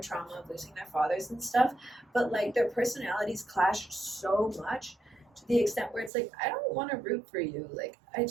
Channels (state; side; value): drops out; left; at 6.1 s